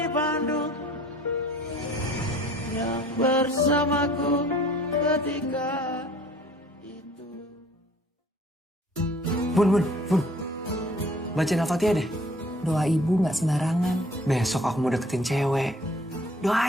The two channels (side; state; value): both; normal; correlation 0.53